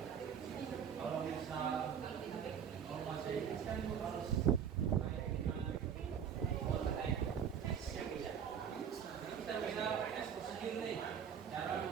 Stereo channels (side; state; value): left; quieter; 7.9 dB